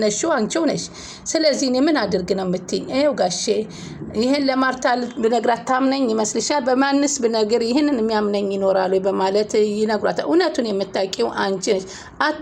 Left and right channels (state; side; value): identical; both; correlation 1.00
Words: አንቺው ነሽ ስለዚህ እኔ ምን አድርግ ነው የምትይኝ ይሄው ጋሼ ይሄን ለማርታ ብነግራት ታምነኝ ይመስልሻል በማንስ ብነግር ይሄንን የሚያምነኝ ይኖራል ማለት ይነግራታል እውነቱን የምታውቂው አንቺ ነሽ